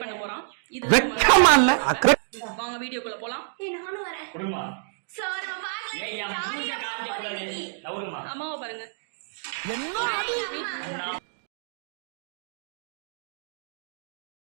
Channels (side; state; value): left; silent; digital silence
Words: பண்ண போகிறான். இது வாங்க வீடியோக்குள்ள போலாம். நானும் வரேன். அம்மாவை பாருங்க.